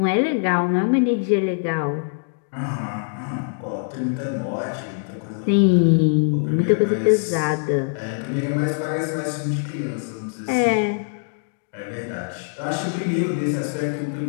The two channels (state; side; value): silent; right; digital silence